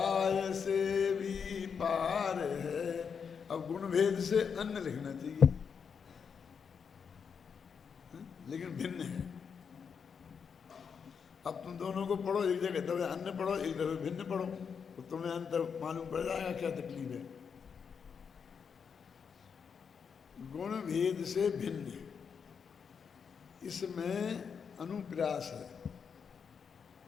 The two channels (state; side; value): quieter; right; 6.5 dB